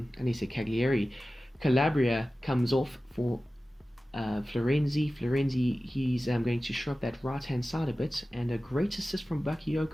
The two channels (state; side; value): normal; both; correlation 0.95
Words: Calabria comes off for Florenzi. He's going to shore up that right-hand side a bit, and a great assist from